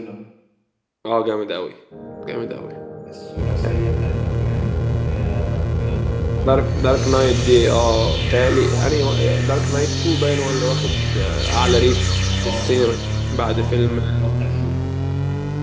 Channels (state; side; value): identical; both; correlation 1.00